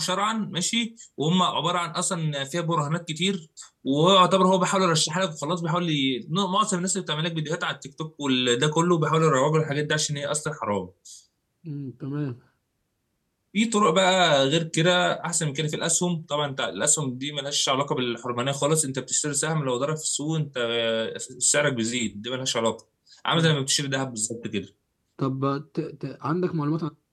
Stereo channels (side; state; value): both; identical; correlation 1.00